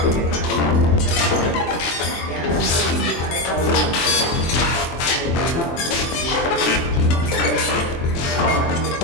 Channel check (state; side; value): late; right; 23 ms